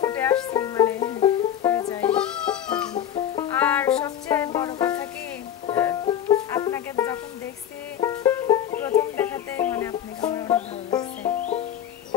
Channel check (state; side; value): quieter; right; 10.2 dB